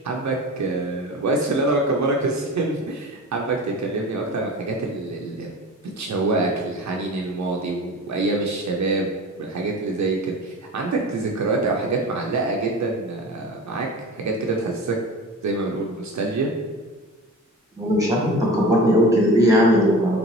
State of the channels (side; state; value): both; normal; correlation 0.35